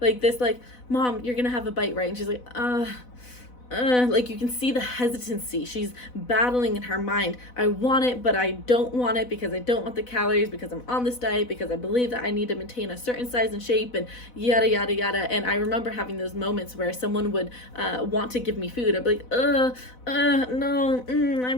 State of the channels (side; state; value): right; late; 4.0 ms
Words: Like this, like, Mom, you're gonna have a bite, right? And she's like, like you can see the hesitancy. She's battling in her mind. I want it, but I don't want it because I don't want the calories, because I'm on this diet, because I believe that I need to maintain a certain size and shape, and yada yada yada. And I remember having those moments where someone would want to give me food. I'd be like, no, I